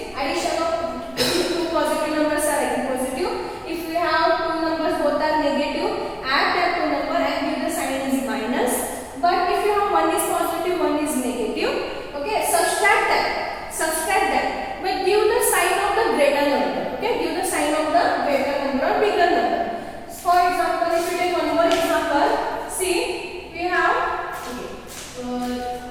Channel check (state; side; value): identical; both; correlation 1.00